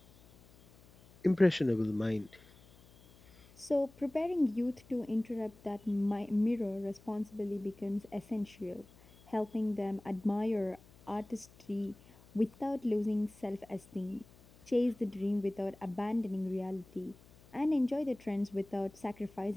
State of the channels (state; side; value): noise; left; hum, 25 dB below the sound